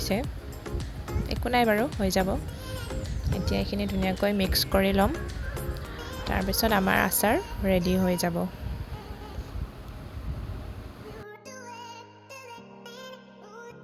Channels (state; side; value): identical; both; correlation 1.00